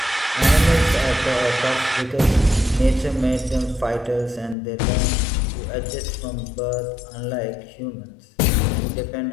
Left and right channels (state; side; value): drops out; right; at 4.5 s